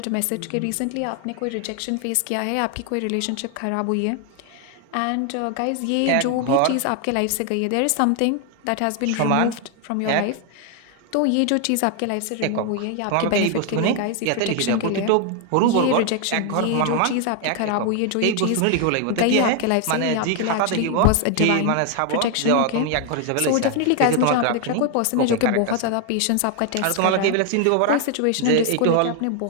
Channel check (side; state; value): both; different; correlation 0.01